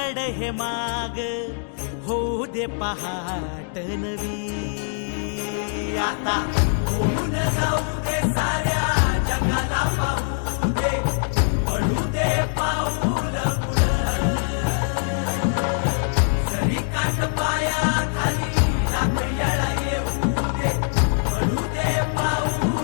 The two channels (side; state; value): right; silent; digital silence